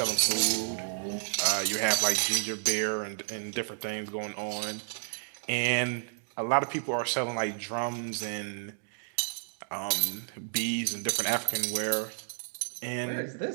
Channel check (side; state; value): left; silent; digital silence